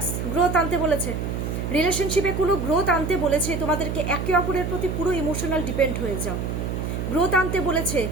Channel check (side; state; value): right; noise; hum, 3 dB below the sound